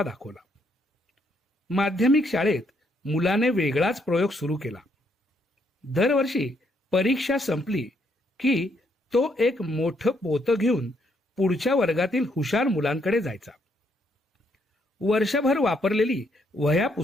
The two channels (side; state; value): both; normal; correlation 0.73